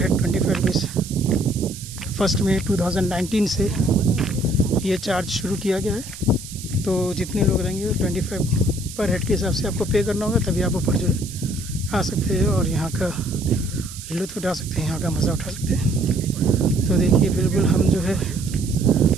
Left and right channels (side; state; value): right; noise; hiss, 13 dB below the sound